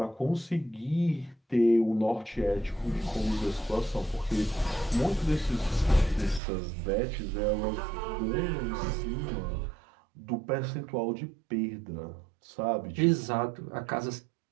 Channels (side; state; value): left; drops out; at 6.4 s